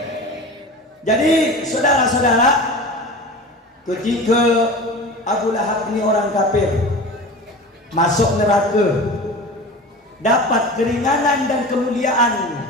Jadi saudara-saudara, ketika Abu Lahab ini orang kafir, masuk neraka, dapat keringanan dan kemuliaan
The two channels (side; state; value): both; normal; correlation 0.34